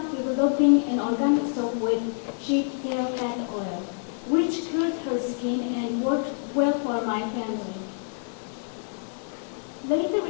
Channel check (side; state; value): right; silent; digital silence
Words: developing an organic soap with sheep tail plant oil, which cured her skin and worked well for my family. Later